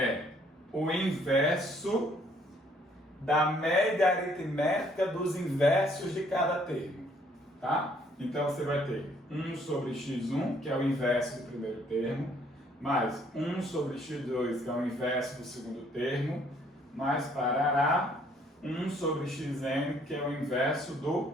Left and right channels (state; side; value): normal; both; correlation 0.64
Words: o inverso da média aritmética dos inversos de cada termo, tá? Então você vai ter 1 sobre x1, que é o inverso do primeiro termo, mais 1 sobre x2, que é o inverso do segundo termo, mais parará 1 sobre xn, que é o inverso do